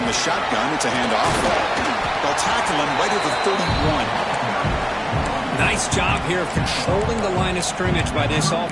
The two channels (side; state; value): both; identical; correlation 1.00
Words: The shotgun, it's a handoff. They'll tackle him right at the 31. Nice job here of controlling the line of scrimmage by this